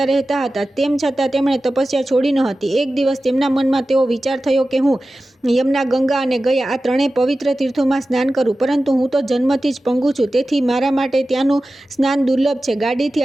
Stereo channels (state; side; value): normal; both; correlation 0.95